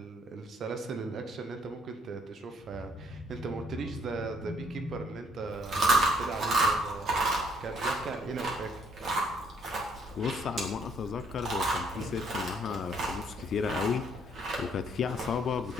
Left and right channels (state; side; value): normal; both; correlation 0.65